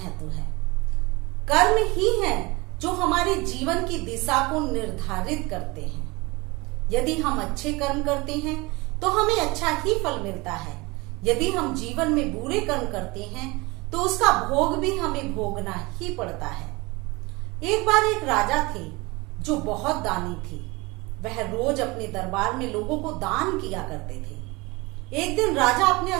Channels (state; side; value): quieter; left; 24.2 dB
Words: है। कर्म ही हैं जो हमारे जीवन की दिशा को निर्धारित करते हैं। यदि हम अच्छे कर्म करते हैं तो हमें अच्छा ही फल मिलता है। यदि हम जीवन में बुरे कर्म करते हैं तो उसका भोग भी हमें भोगना ही पड़ता है। एक बार एक राजा थे जो बहुत दानी थे। वह रोज अपने दरबार में लोगों को दान किया करते थे। एक दिन राजा अपने